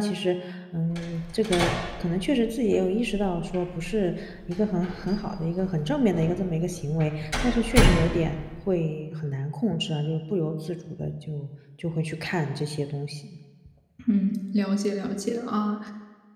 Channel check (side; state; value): both; identical; correlation 1.00